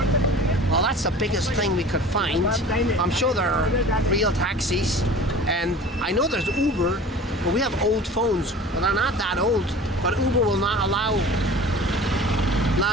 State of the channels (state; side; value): normal; both; correlation 0.41